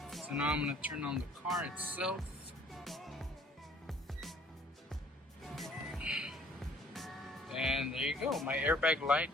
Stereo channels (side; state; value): both; normal; correlation 0.57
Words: So now I'm gonna turn on the car itself. And there you go, my airbag light